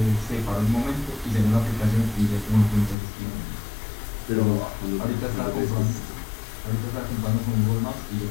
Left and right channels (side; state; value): right; drops out; at 3.0 s